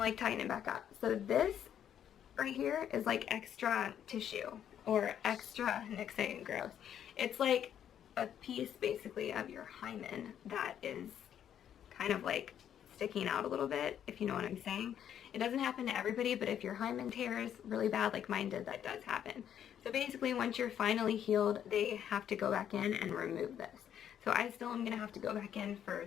like tighten it back up. So this right here is like extra tissue or extra, Nick's saying gross. It's like a piece basically of your hymen that is kind of like sticking out a little bit, if you know what I'm saying. It doesn't happen to everybody, but if your hymen tears really bad like mine did, that does happen. So basically, once you're finally healed, they have to go back in and remove this. So I still am gonna have to go back in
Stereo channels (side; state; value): right; quieter; 9.6 dB